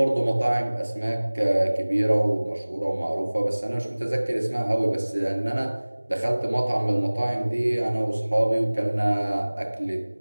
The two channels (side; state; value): both; inverted; correlation -1.00